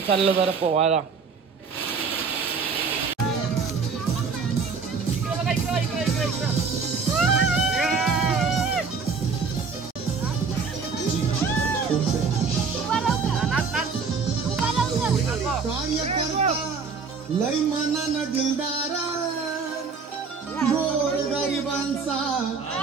चाललो जरा पोवायला. लय मनानं दिलदारा गोर गरिबांचा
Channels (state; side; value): quieter; left; 5.1 dB